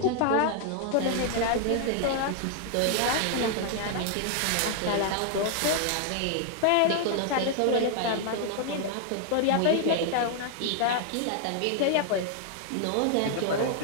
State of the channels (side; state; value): both; different; correlation 0.00